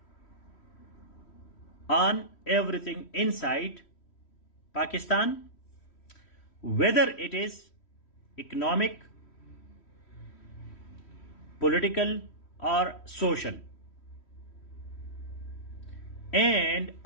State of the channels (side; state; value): right; late; 3.1 ms